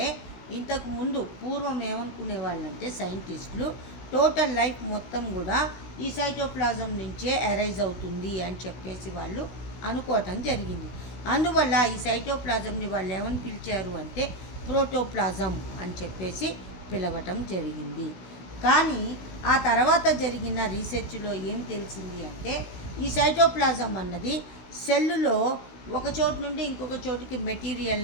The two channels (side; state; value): right; late; 16 ms